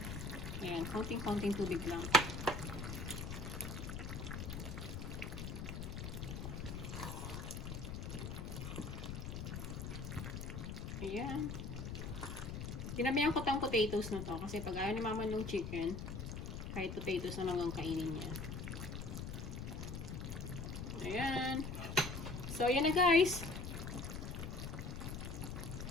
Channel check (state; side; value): noise; left; rumble, 5 dB below the sound